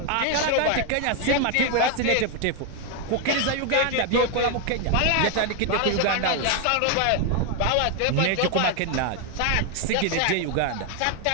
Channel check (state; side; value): different; both; correlation 0.01